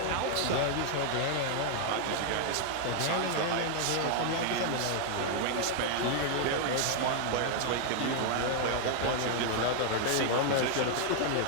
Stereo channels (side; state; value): both; different; correlation 0.00